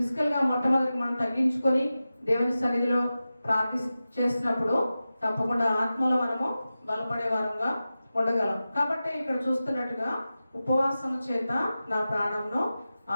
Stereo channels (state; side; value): inverted; both; correlation -0.94